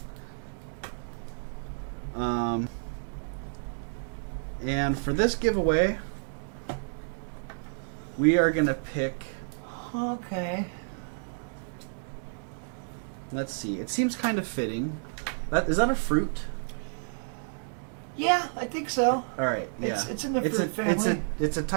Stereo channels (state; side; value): silent; left; digital silence